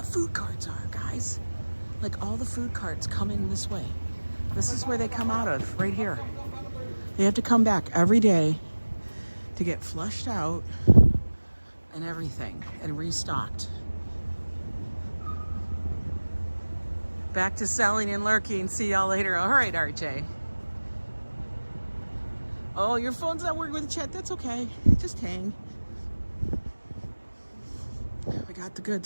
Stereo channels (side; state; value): both; inverted; correlation -1.00